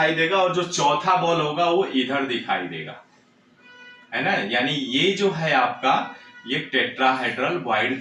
देगा और जो चौथा बॉल होगा वो इधर दिखाई देगा, है ना। यानी ये जो है आपका ये टेट्राहेड्रल वॉइड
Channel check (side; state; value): both; identical; correlation 1.00